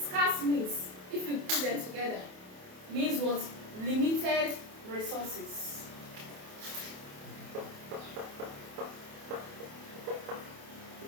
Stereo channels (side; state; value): left; late; 28 ms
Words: means, if you put them together, means what? Limited resources.